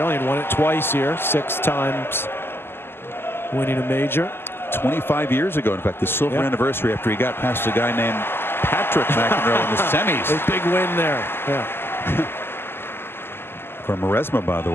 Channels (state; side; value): late; right; 0.11 ms